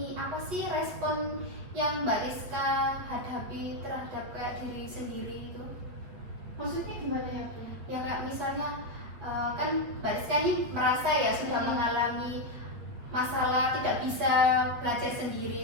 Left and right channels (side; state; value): left; late; 8.5 ms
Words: apa sih respon yang Mbak Rizka hadapi terhadap kayak diri sendiri itu? Maksudnya gimana ya Bu? Ya kayak misalnya kan Mbak Rizka ini merasa ya sudah mengalami masalah tidak bisa belajar